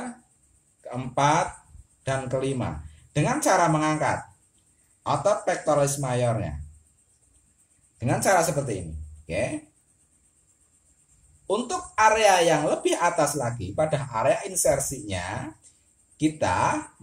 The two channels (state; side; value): identical; both; correlation 1.00